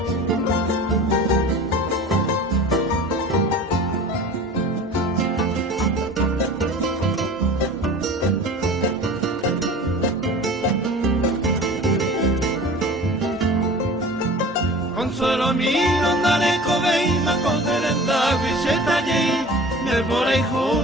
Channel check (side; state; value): both; normal; correlation 0.40